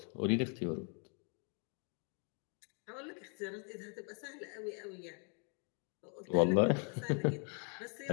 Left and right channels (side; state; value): right; quieter; 39.3 dB